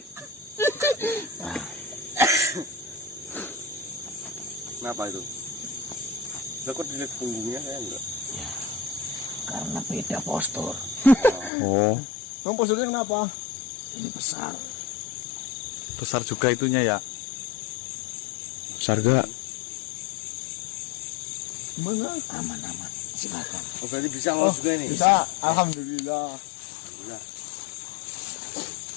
Kenapa itu? Saya kok dilihat punggungnya saya enggak. Karena beda postur. Oh, Bang posturnya kenapa? Ini besar. besar juga itunya ya. Besar gak? Gimana? Aman-aman. Silakan. Oh, berarti bisa lolos juga ini. Bisa, alhamdulillah.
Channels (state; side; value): drops out; right; at 11.5 s